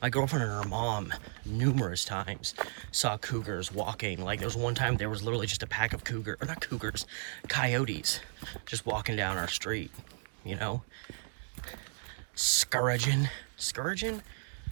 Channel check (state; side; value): silent; left; digital silence